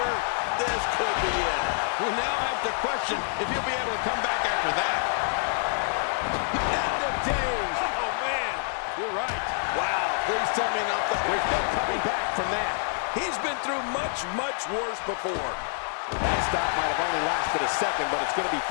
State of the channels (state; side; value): silent; right; 60 dB below the other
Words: This could be it. We now have to question if he'll be able to come back after that. End of days. Oh, man, you're right. Wow, please tell me not the... There's no coming back from that. He's been through much, much worse before. That stop might have only lasted a second, but it's going to be